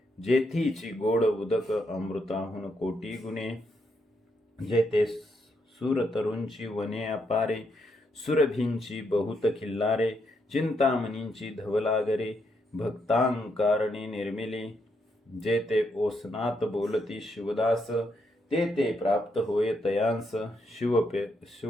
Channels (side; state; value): both; normal; correlation 0.78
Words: जेथीची गोड उदक अमृताहून कोटी गुणे. जेथे सुरतरूंची वने अपारे, सुरभींची बहुत खिल्लारे. चिंतामणींची धवलागरे, भक्तांकारणी निर्मिली. जेथे ओसनात बोलती शिवदास, ते प्राप्त होय तयांस.